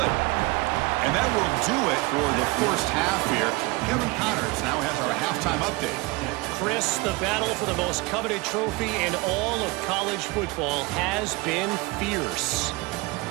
And that will do it for the first half here. Kevin Connors now has our halftime update. Chris, the battle for the most coveted trophy in all of college football has been fierce.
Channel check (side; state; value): left; quieter; 23.4 dB